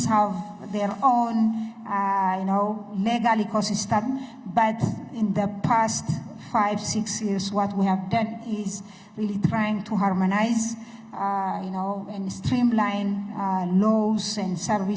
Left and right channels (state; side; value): identical; both; correlation 1.00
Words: have their own, legal ecosystem. But in the past 5-6 years, what we have done is really trying to harmonize, and streamline laws and